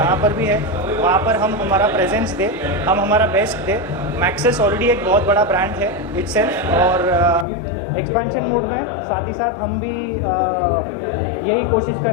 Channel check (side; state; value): right; drops out; at 7.5 s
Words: पर भी है, वहाँ पर हम हमारा प्रेजेंस दें, हम हमारा बेस्ट दें। मैक्सिस ऑलरेडी एक बहुत बड़ा ब्रांड है इटसेल्फ और एक्सपेंशन मोड में साथ ही साथ हम भी यही कोशिश कर